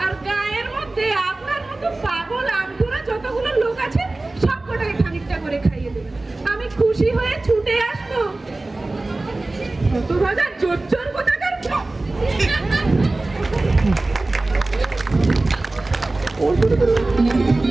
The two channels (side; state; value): left; quieter; 3.0 dB